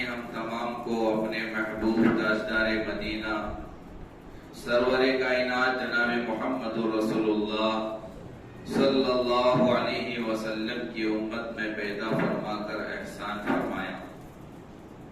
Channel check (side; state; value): both; identical; correlation 1.00